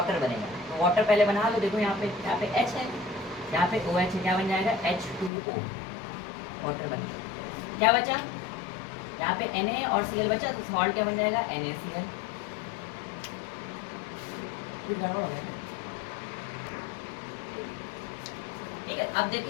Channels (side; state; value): right; drops out; at 5.3 s